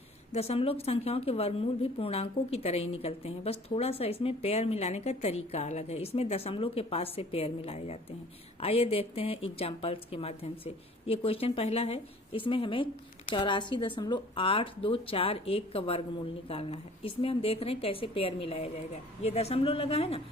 दशमलव संख्याओं के वर्गमूल भी पूर्णांकों की तरह ही निकलते हैं, बस थोड़ा सा इसमें पेयर मिलाने का तरीका अलग है। इसमें दशमलव के पास से पेयर मिलाए जाते हैं। आइए देखते हैं एग्जाम्पल्स के माध्यम से। ये क्वेश्चन पहला है, इसमें हमें 84.8241 का वर्गमूल निकालना है। इसमें हम देख रहे हैं कैसे पेयर मिलाया जाएगा। ये दशमलव लगा है ना,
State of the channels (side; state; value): both; normal; correlation 0.50